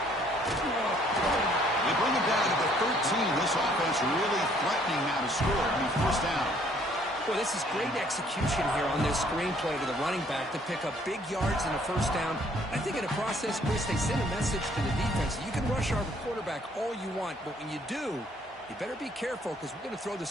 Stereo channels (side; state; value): both; normal; correlation 0.63